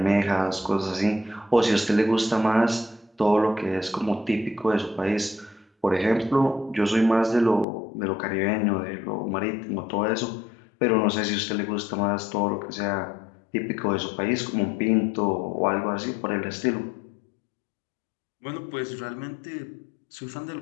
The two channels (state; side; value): drops out; right; at 7.7 s